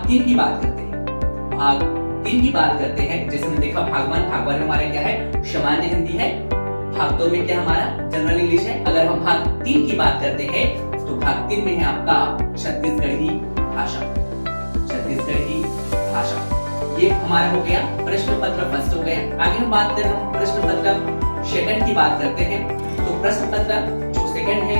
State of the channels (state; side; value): inverted; both; correlation -1.00